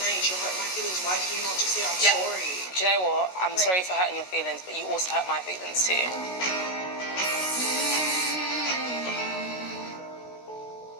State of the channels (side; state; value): right; late; 16 ms